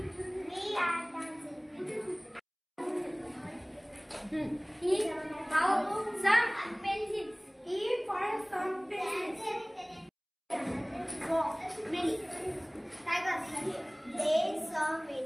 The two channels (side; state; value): both; identical; correlation 1.00